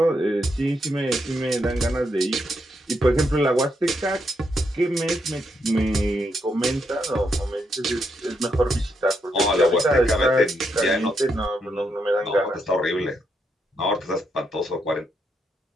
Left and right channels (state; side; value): normal; both; correlation 0.79